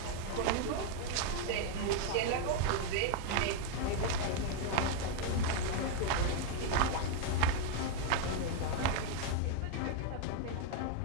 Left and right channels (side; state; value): both; different; correlation 0.01